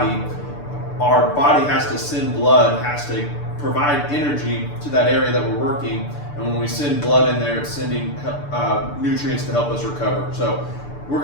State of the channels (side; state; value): right; late; 6.8 ms